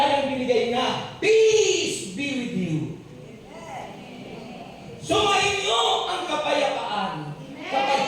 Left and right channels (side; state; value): both; identical; correlation 1.00